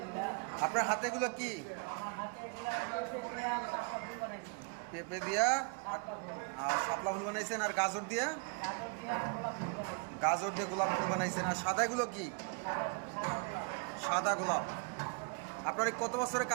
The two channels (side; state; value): left; quieter; 36.4 dB